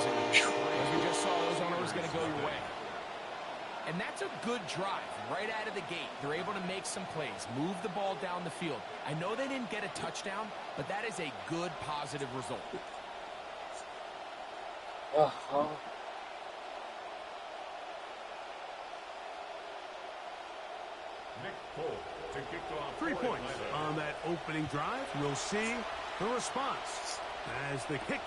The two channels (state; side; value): identical; both; correlation 1.00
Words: And as we just saw, those aren't always going to go your way. And that's a good drive right out of the gate. They're able to make some plays, move the ball down the field. I know they didn't get a touchdown, but that is a good, positive result. Nick Pope to kick off 3 points on that opening drive. We'll see the response as the